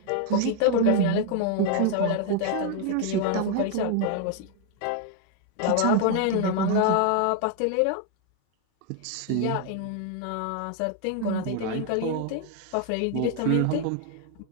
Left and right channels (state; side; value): different; both; correlation 0.01